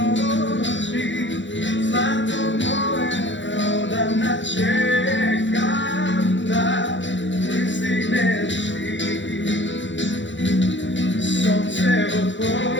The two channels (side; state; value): right; late; 0.54 ms